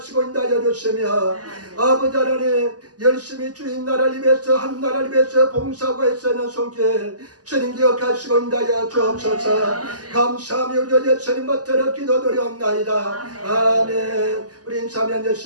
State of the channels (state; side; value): late; left; 0.68 ms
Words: 인도하여 주시며 아버지 하나님 열심히 주인 나라를 위해서 한 나라를 위해서 봉사하고 애쓰는 손길 주님 기억하시고 인도하여 주옵소서. 감사하며 우리 예수님 받들어 기도드리옵나이다. 아멘. 우리 인사하면